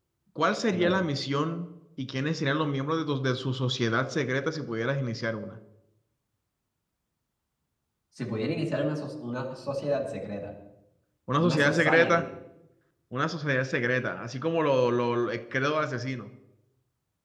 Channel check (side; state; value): both; identical; correlation 1.00